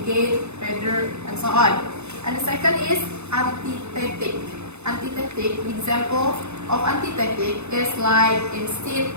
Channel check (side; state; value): left; late; 0.81 ms